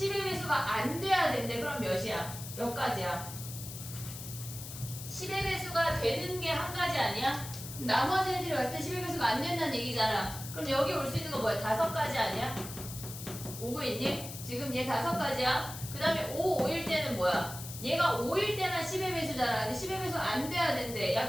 배수가 안 돼야 된대. 그럼 몇이야? 몇 가지야? 10의 배수가 되는 게 한 가지 아니야? 나머지 애들이 왔을 때 10의 배수가 안 된다는 얘기잖아. 그럼 여기 올 수 있는 거 뭐야? 5가지 아니야? 오고 있니? 지금 얘 5가지야. 그 다음에 5, 5일 때는 뭐야? 얘가 5일 때만 10의 배수잖아. 근데 10의 배수 안 돼야 된대. 야,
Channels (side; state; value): left; noise; hiss, 11 dB below the sound